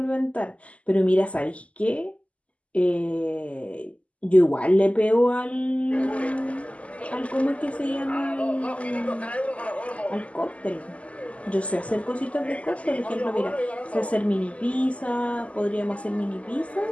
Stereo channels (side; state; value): right; late; 0.066 ms